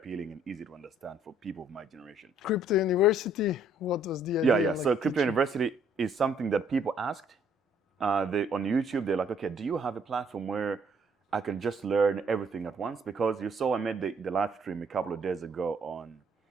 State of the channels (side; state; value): both; normal; correlation 0.64